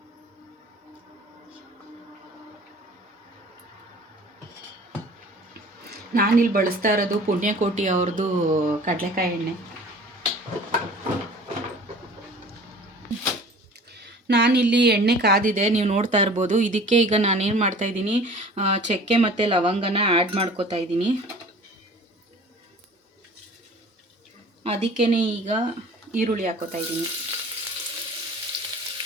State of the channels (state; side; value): normal; both; correlation 0.45